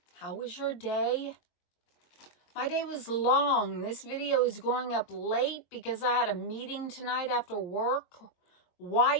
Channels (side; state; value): right; late; 22 ms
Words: How was your day? My day was long. This video is going up late because I had a meeting tonight after work. Why